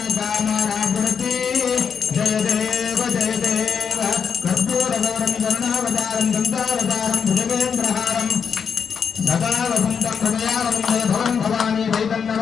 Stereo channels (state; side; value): quieter; right; 6.6 dB